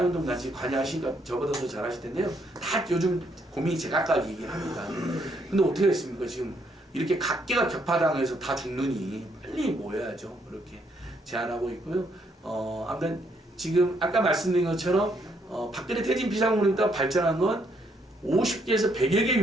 같이 관여하시니까 저보다 더 잘하실 텐데요. 다 요즘 고민이 제각각이긴 합니다. 근데 어떻게 했습니까? 지금 이렇게 각계가 격파당해서 다 죽느니 빨리 모여야죠. 그렇게 제안하고 있고요. 아무튼 지금 아까 말씀드린 것처럼 박근혜 퇴진 비상국민운동 발전한 건 50개에서 100여 개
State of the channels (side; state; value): both; normal; correlation 0.72